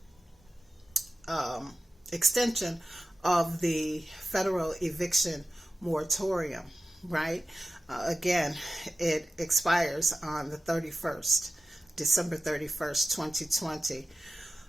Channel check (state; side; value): normal; both; correlation 0.95